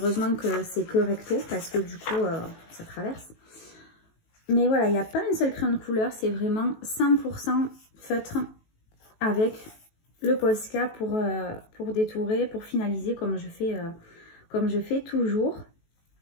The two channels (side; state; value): right; late; 18 ms